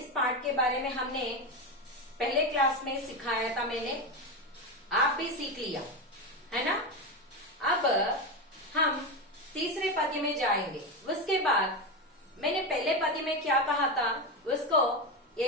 पाठ के बारे में हमने पहले क्लास में सिखाया था। आप भी सीख लिया है ना। अब हम तीसरे पद्य में जाएंगे। उसके बाद मैंने पहले पद्य में क्या कहा था उसको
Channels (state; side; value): normal; both; correlation 0.15